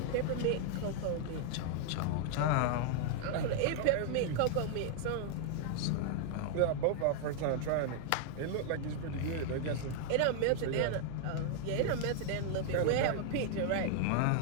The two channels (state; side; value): different; both; correlation 0.00